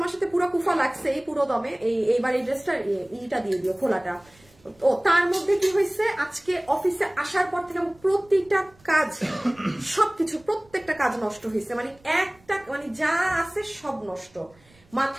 সাথে পুরো কুফা লাগছে, এই পুরো দমে। এইবার এই ড্রেসটা ইটা দিয়ে দিও, খোলাটা। ও তার মধ্যে কি হয়েছে, আজকে অফিসে আসার পর থেকে প্রতিটা কাজ, সবকিছু, প্রত্যেকটা কাজ নষ্ট হয়েছে। মানে একটা, মানে যা আছে সব নষ্ট,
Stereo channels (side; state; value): right; noise; rumble, 30 dB below the sound